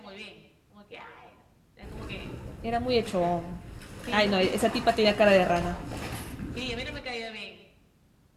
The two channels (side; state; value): both; identical; correlation 1.00